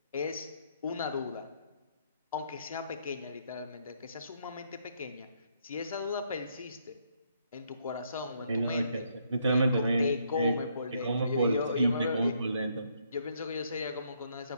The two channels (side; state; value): both; inverted; correlation -0.72